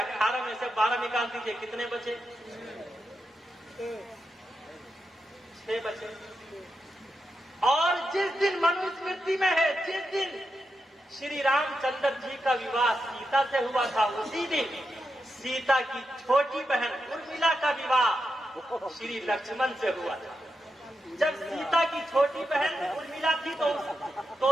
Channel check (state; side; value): normal; both; correlation 0.87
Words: میں سے 12 نکال دیجئے، کتنے بچے؟ 6 بچے. اور جس دن منو اسمرتی میں ہے، جس دن شری رام چندر جی کا وواہ سیتا سے ہوا تھا، اسی دن سیتا کی چھوٹی بہن ارملا کا وواہ شری لکشمن سے ہوا تھا. جب سیتا کی چھوٹی بہن ارملا تھی تو